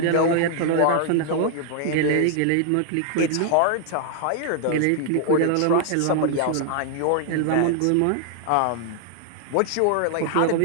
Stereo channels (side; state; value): both; different; correlation 0.00